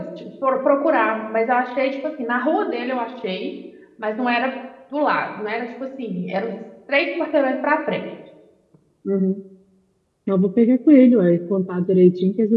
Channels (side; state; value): both; identical; correlation 1.00